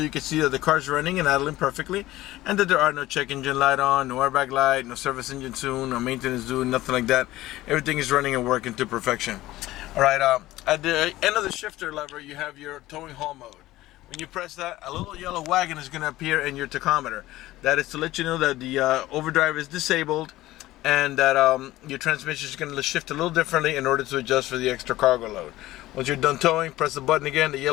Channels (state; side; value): quieter; right; 16.6 dB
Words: you can see that the car's running and idling perfectly, and that there are no check engine light on, no airbag light, no service engine soon, no maintenance due, nothing like that. Everything is running and working to perfection. All right, at the end of the shifter lever, you have your towing haul mode. When you press that, a little yellow wagon is going to appear in your tachometer. That is to let you know that the overdrive is disabled, and that your transmission is going to shift a little differently in order to adjust for the extra cargo load. Once you're done towing, press the button again, the